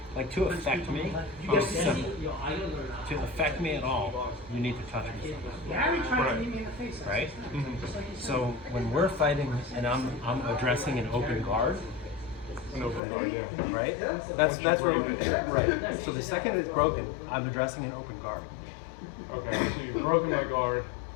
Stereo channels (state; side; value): drops out; right; at 13.0 s